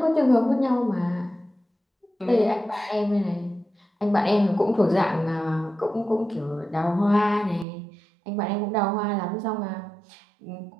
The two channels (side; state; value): left; drops out; at 7.7 s